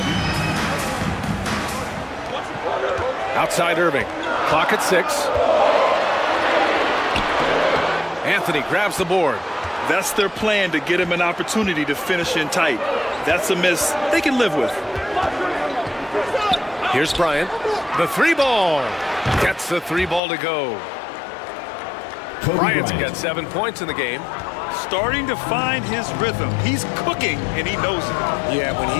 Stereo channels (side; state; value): right; drops out; at 20.2 s